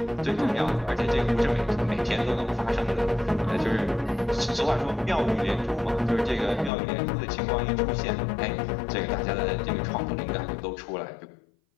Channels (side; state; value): right; drops out; at 6.7 s